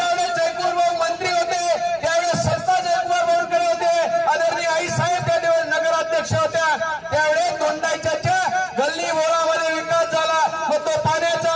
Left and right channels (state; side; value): identical; both; correlation 1.00